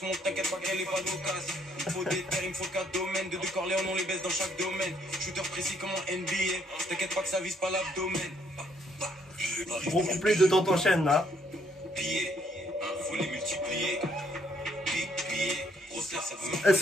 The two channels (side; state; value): both; normal; correlation 0.69